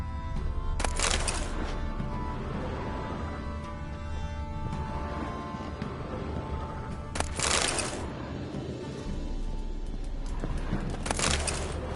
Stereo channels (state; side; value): identical; both; correlation 1.00